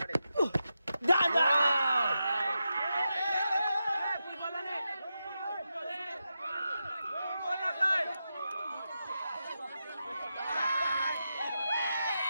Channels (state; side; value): inverted; both; correlation -0.89